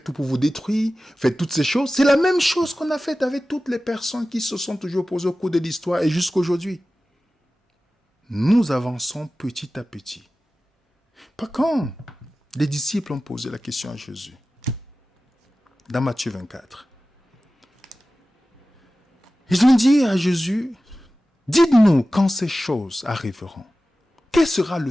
tout pour vous détruire, faites toutes ces choses. C'est la même chose qu'on a faite avec toutes les personnes qui se sont toujours opposées au cours de l'histoire et jusqu'à aujourd'hui. Nous avançons petit à petit. Par quand les disciples ont posé la question à Jésus, dans Matthieu 24, ils ont dit à Jésus, dites-nous quand ces choses arriveront. Quel sera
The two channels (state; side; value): normal; both; correlation 0.96